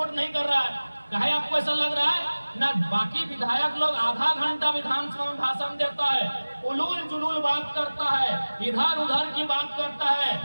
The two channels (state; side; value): inverted; both; correlation -1.00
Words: नहीं कर रहा है। कहे आपको ऐसा लग रहा है ना, बाकी विधायक लोग आधा घंटा विधानसभा में भाषण देता है, उलूल जुलूल बात करता है, इधर उधर की बात करता है,